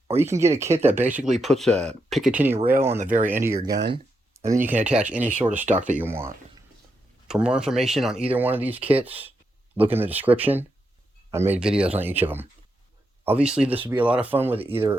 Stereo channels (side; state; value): both; normal; correlation 0.83